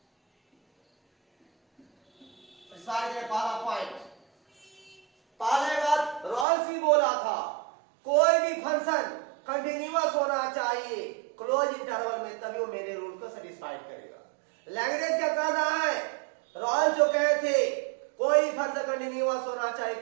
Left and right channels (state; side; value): drops out; left; at 6.5 s